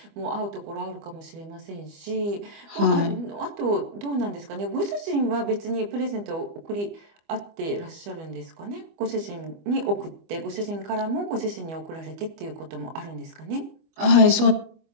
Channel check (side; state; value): left; late; 24 ms